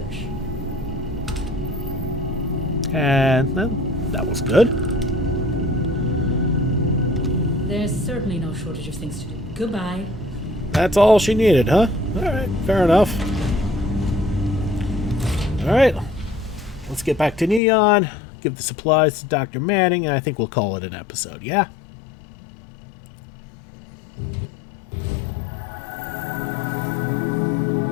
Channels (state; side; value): drops out; right; at 17.6 s